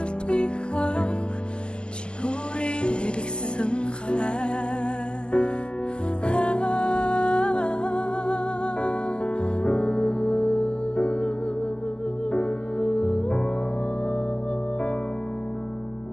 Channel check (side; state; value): right; late; 0.049 ms